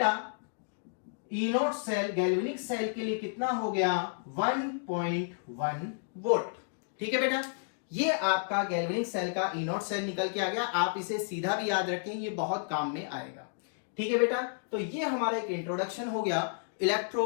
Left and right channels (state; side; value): silent; right; digital silence